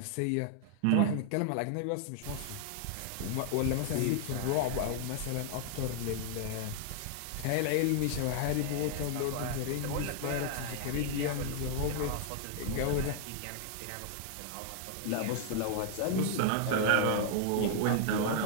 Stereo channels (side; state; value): both; different; correlation -0.01